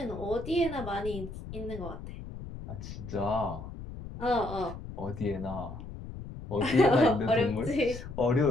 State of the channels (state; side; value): noise; left; rumble, 11 dB below the sound